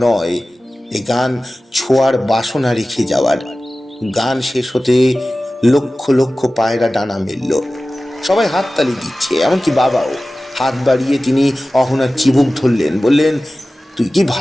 নয়, এই গান ছোঁয়ার বাসনা রেখে যাওয়ার। গান শেষ হতে লক্ষ লক্ষ পায়রা ডানা মেলল। সবাই হাততালি দিচ্ছে, এমনকি বাবাও। হাত বাড়িয়ে তিনি অহনার চিবুক ধরলেন, বললেন, তুই কি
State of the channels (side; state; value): both; normal; correlation 0.96